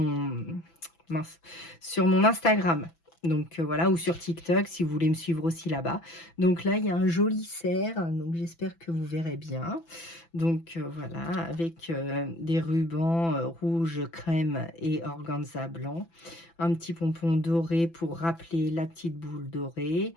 Instagram. Donc voilà, ou sur TikTok si vous voulez me suivre aussi là-bas. Donc là, il y a un joli cerf, donc j'espère que vous verrez bien. Donc voilà, avec des rubans rouge, crème et organza blanc. Un petit pompon doré pour rappeler la petite boule dorée.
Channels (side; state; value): right; late; 6.0 ms